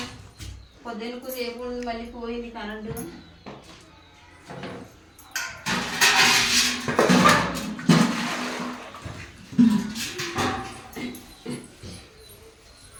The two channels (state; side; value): identical; both; correlation 1.00